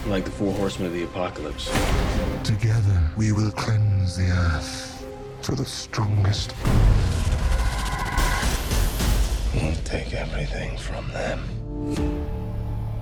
Like the 4 horsemen of the apocalypse. Together, we will cleanse the earth to the strongest. We'll take everything from them.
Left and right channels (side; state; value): both; identical; correlation 1.00